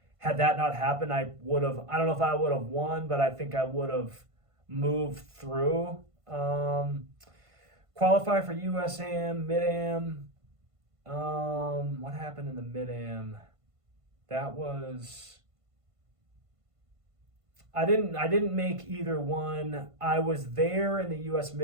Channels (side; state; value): left; late; 1.5 ms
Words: had that not happened, I don't know if I would have won, but I think I would have moved through. Qualify for USAM, Mid-Am. What happened in the Mid-Am? That was, I didn't make either one. I was there in the US